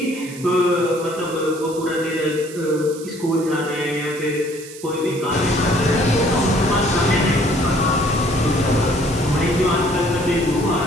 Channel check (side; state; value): right; noise; hiss, 16 dB below the sound